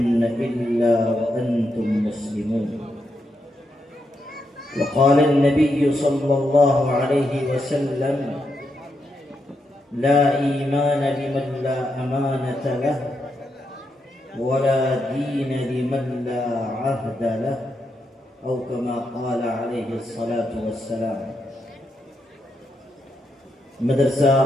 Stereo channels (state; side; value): normal; both; correlation 0.82